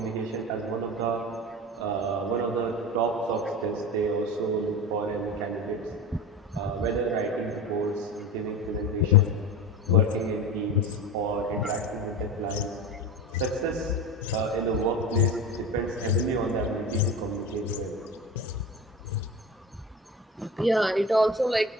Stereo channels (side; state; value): both; normal; correlation 0.29